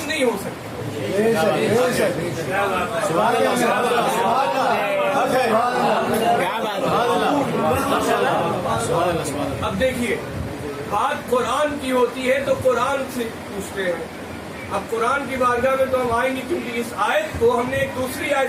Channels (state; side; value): identical; both; correlation 1.00